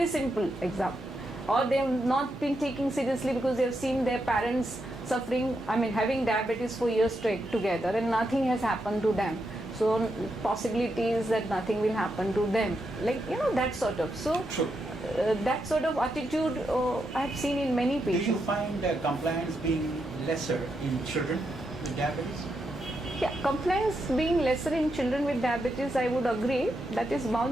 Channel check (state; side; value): normal; both; correlation 0.83